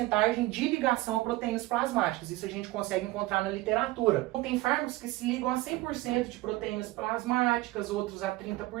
de ligação a proteínas plasmáticas. Isso a gente consegue encontrar na literatura. Então, tem fármacos que se ligam a 100% de proteínas plasmáticas, outros a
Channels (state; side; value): quieter; left; 18.8 dB